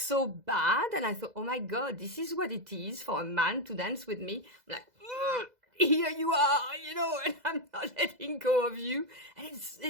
bad, and I thought, oh my God, this is what it is for a man to dance with me. I'm like, here you are, and I'm not letting go of you. And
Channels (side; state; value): left; late; 2.0 ms